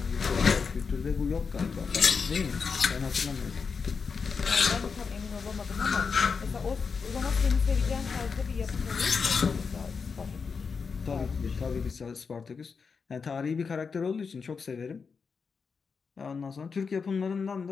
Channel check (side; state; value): right; quieter; 5.4 dB